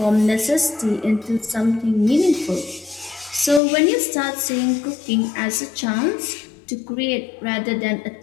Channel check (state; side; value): drops out; right; at 3.6 s